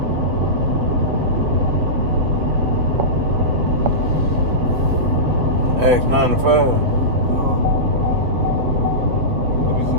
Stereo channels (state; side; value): late; left; 7.4 ms